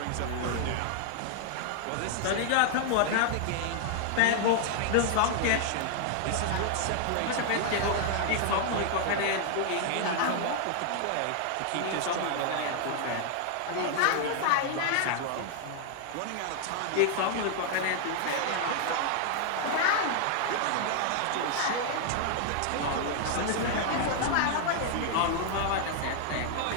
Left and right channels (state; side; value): different; both; correlation 0.00